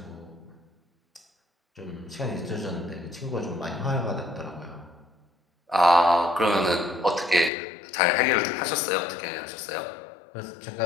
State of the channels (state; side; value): drops out; right; at 7.5 s